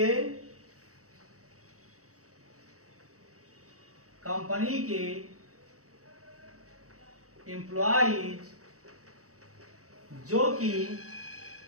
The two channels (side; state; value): left; late; 0.65 ms